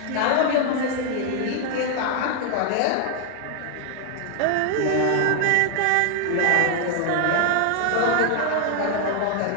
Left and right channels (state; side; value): different; both; correlation 0.00